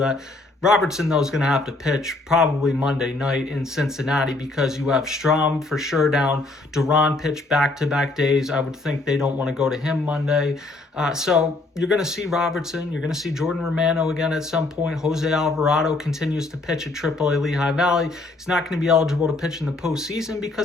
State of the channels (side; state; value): right; quieter; 3.1 dB